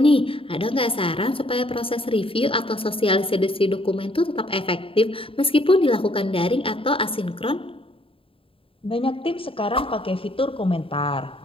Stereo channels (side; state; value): right; late; 0.26 ms